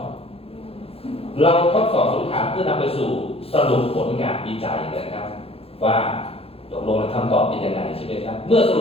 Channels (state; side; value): late; right; 0.28 ms